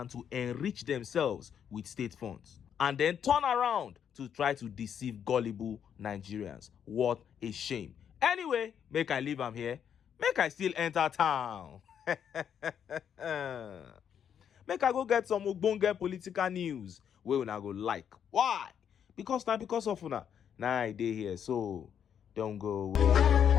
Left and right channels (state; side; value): quieter; right; 8.5 dB